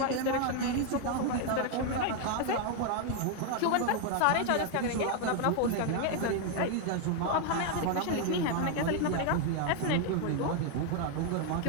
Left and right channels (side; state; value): both; different; correlation 0.01